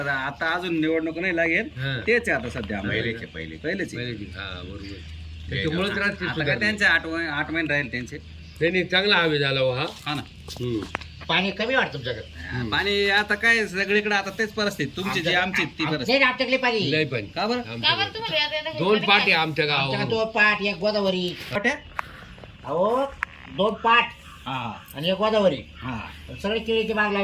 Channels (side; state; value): both; identical; correlation 1.00